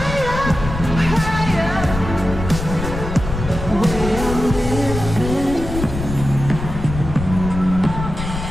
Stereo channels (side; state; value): left; noise; rumble, 7 dB below the sound